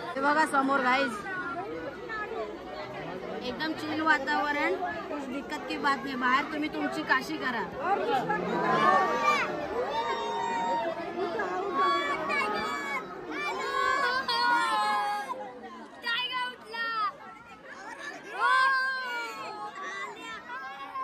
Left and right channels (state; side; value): identical; both; correlation 1.00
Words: हे बघा समोर गाईज एकदम चिल वातावरण. कुछ दिक्कत की बात नाही. बाहेर तुम्ही तुमची काशी करा.